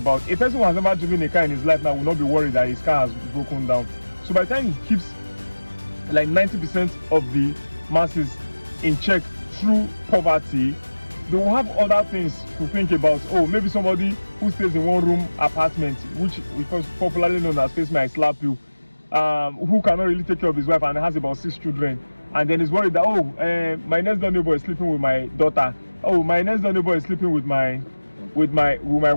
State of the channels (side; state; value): both; inverted; correlation -1.00